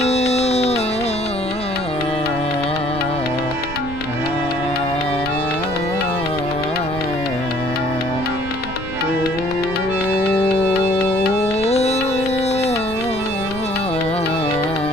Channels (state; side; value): noise; right; rumble, 11 dB below the sound